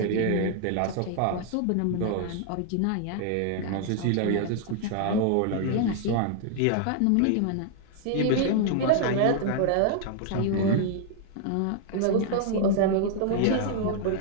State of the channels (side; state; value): both; different; correlation -0.01